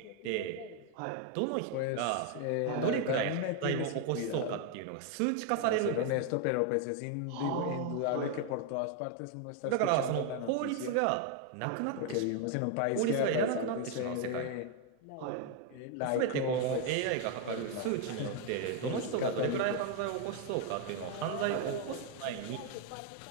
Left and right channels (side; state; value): both; different; correlation 0.01